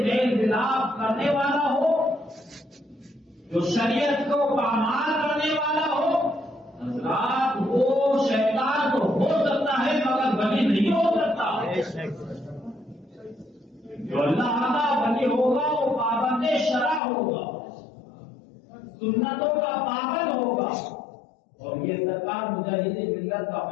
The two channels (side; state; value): right; drops out; at 17.0 s